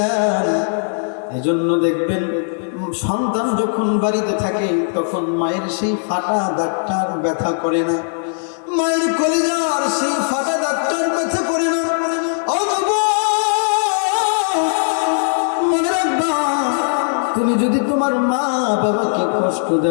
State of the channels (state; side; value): silent; right; digital silence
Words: এজন্য দেখবেন সন্তান যখন বাড়িতে থাকে তখন মায়ের সেই ফাটা দাগটার ব্যথা করে না, মায়ের কলিজার সেই ফাটা দাগটার ব্যথা করে না। মনে রাখবা, তুমি যদি তোমার মা বাবাকে কষ্ট